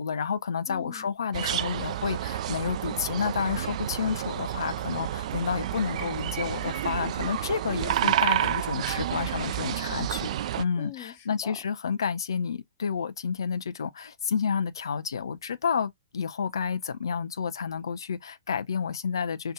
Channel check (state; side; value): inverted; both; correlation -0.56